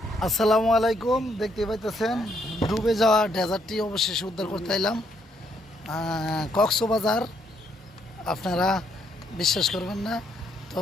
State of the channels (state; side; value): normal; both; correlation 0.72